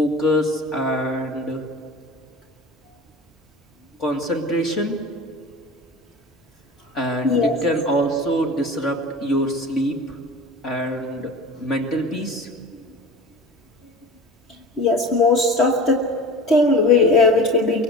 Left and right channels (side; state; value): both; normal; correlation 0.36